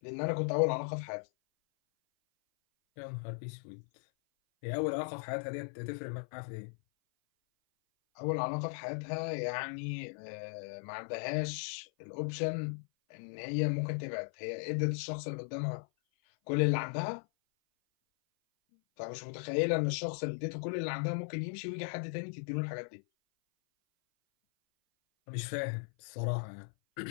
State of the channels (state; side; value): silent; right; 53 dB below the other